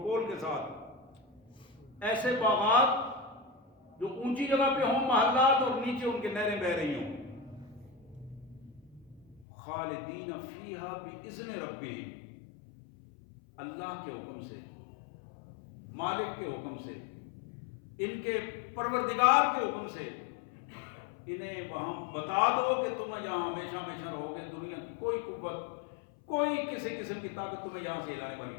کے ساتھ، ایسے باغات جو اونچی جگہ پہ ہوں محلات اور نیچے ان کے نہریں بہہ رہی ہوں، خالدین فیہا باذن ربہم، اللہ کے حکم سے، مالک کے حکم سے، ان کے پروردگار کے حکم سے، انہیں وہاں بتا دو کہ تم یہاں ہمیشہ ہمیشہ رہو گے، دنیا کی کوئی قوت، کوئی کسی قسم کی طاقت تمہیں یہاں سے ہلانے والی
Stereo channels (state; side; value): drops out; right; at 9.5 s